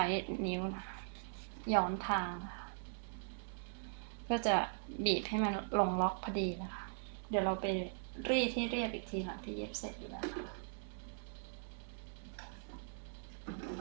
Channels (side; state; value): left; silent; digital silence